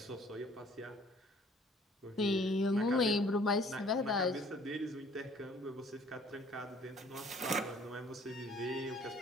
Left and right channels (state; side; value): normal; both; correlation 0.56